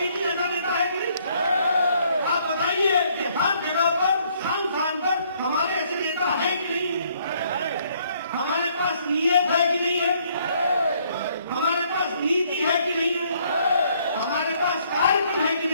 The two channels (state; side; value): inverted; both; correlation -0.66